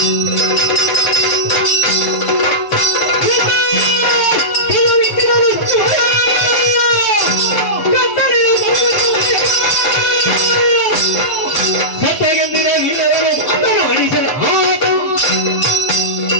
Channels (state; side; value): late; right; 6.7 ms